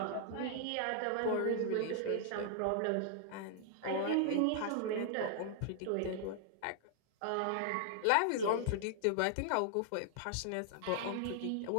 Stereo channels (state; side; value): different; both; correlation 0.00